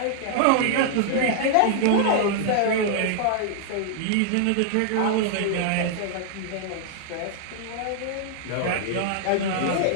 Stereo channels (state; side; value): different; both; correlation -0.01